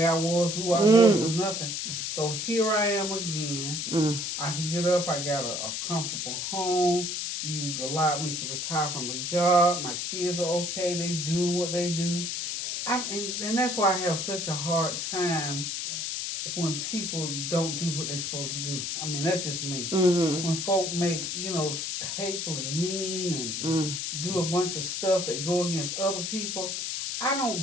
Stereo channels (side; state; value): left; noise; hiss, 3 dB below the sound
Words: I was, who I was, or nothing. So here I am again. I can get up. I got a comfortable home. You've allowed me to retire from a job. My kids are okay. They doing what they do. And that's why I have such a hard time when people don't do what they're supposed to do. I mean, that's just me. Mm-hmm. When folk make, hateful and mean and do a bunch of stuff that go against other people, I don't